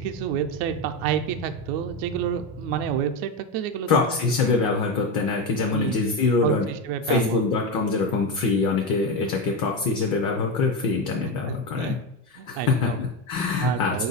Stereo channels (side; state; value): both; normal; correlation 0.14